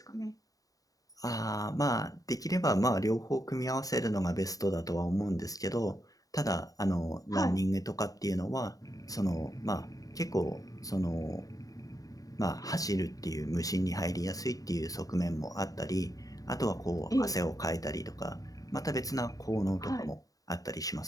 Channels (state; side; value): late; right; 0.17 ms